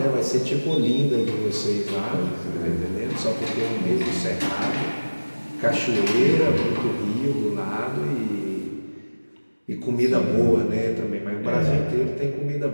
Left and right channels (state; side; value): inverted; both; correlation -1.00